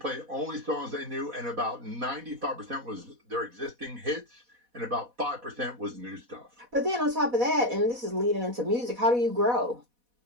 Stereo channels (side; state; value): left; late; 4.1 ms